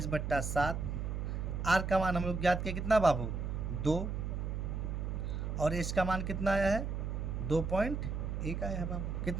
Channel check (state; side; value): noise; right; hum, 3 dB below the sound